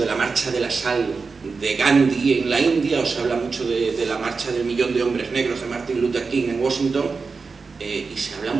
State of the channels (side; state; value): left; quieter; 4.6 dB